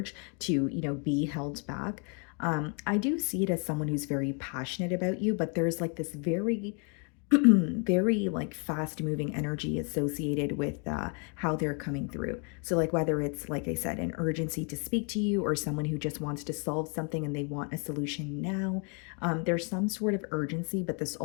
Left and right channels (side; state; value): right; quieter; 38.1 dB